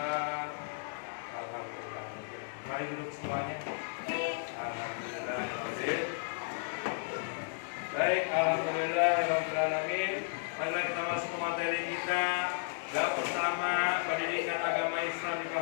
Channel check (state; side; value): silent; right; digital silence